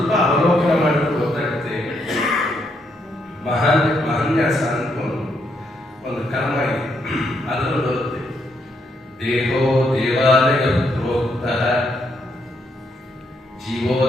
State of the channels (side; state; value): both; normal; correlation 0.76